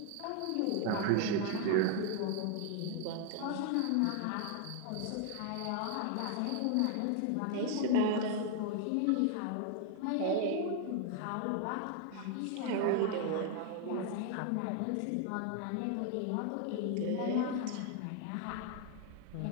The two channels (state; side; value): different; both; correlation 0.00